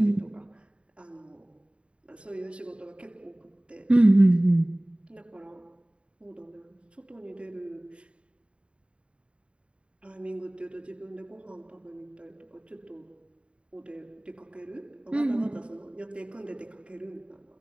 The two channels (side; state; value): left; late; 0.058 ms